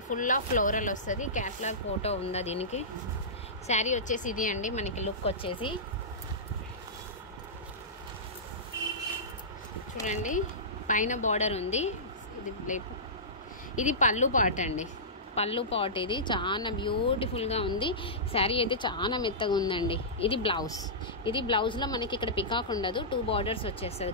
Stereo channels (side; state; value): both; normal; correlation -0.18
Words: ఫుల్ ఆఫ్ ఫ్లోరల్ వస్తుంది. క్యాట్లాగ్ ఫోటో ఉందా దీనికి. శారీ వచ్చేసి ఇది అండి, మనకి లుక్ వచ్చేసి చూడండి, పైన బార్డర్ ఉంది. ఇది పళ్ళు పార్ట్ అండి, పళ్ళు పార్ట్. ఇది చాలా బ్యూటిఫుల్గా ఉంది. శారీ అయితే చాలా మెత్తగా ఉందండి. ఇది బ్లౌజ్. ఇది బ్లౌజ్లో మనకి ఇక్కడ పికాక్ ఉండదు, 2 బార్డర్స్ వచ్చేస్తుంది.